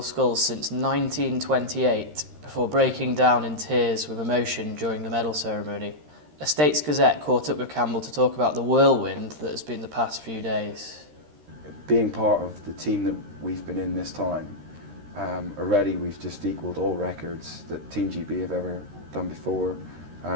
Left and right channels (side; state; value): left; late; 13 ms